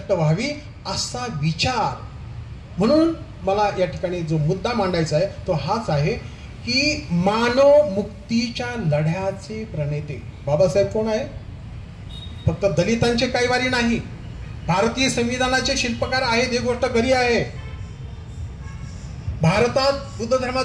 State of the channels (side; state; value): both; identical; correlation 1.00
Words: व्हावी असा विचार. म्हणून मला या ठिकाणी जो मुद्दा मांडायचा आहे तो हाच आहे की मानव मुक्तीच्या लढ्याचे प्रणेते बाबासाहेब कोण आहे? फक्त दलितांचे कैवारी नाही, भारतीय संविधानाचे शिल्पकार आहेत, ही गोष्ट खरी आहे. भारतात बुद्ध